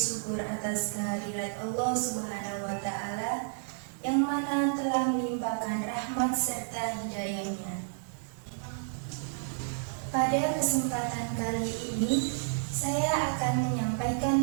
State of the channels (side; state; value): left; silent; 57 dB below the other